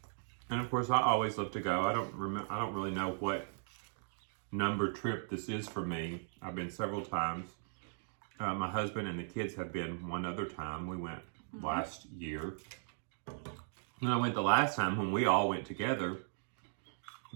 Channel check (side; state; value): left; silent; digital silence